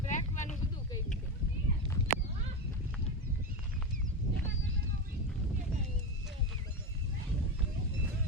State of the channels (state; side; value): normal; both; correlation 0.17